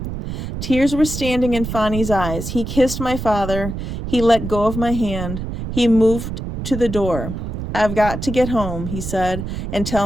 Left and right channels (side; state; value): right; noise; rumble, 6 dB below the sound